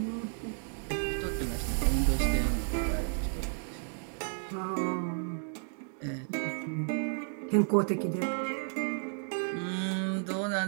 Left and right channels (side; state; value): left; silent; 56 dB below the other